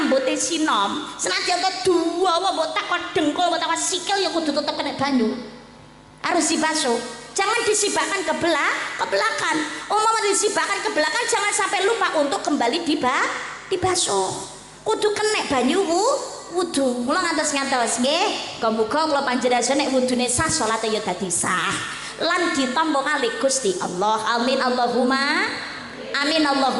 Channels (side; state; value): both; identical; correlation 1.00